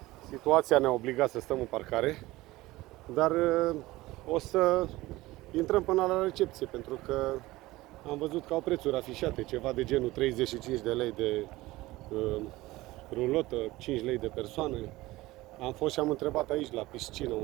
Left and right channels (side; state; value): left; quieter; 18.7 dB